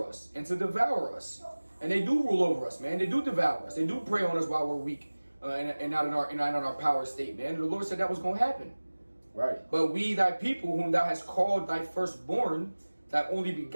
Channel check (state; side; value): inverted; both; correlation -1.00